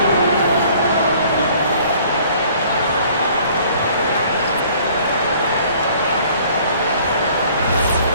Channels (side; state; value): both; inverted; correlation -0.55